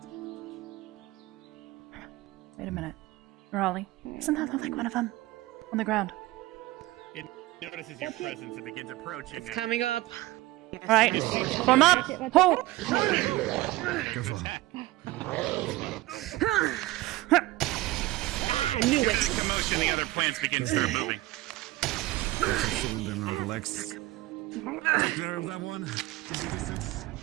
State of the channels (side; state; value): left; quieter; 18.4 dB